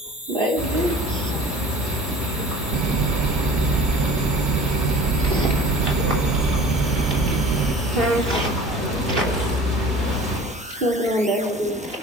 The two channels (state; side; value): normal; both; correlation 0.44